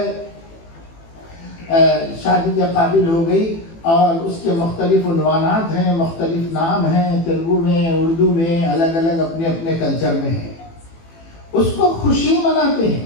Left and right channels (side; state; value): right; late; 18 ms